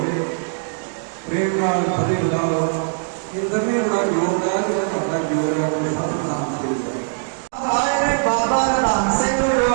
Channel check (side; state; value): left; silent; digital silence